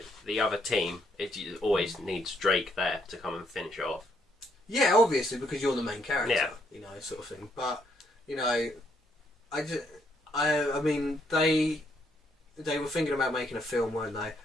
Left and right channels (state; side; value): normal; both; correlation 0.73